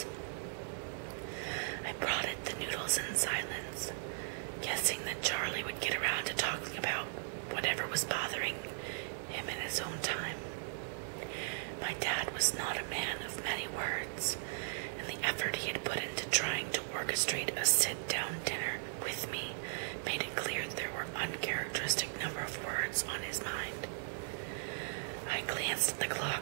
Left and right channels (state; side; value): silent; left; digital silence